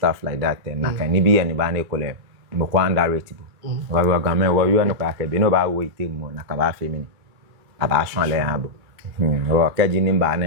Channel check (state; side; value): late; left; 2.4 ms